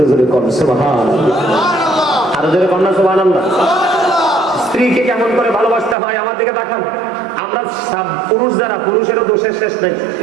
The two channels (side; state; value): left; drops out; at 6.0 s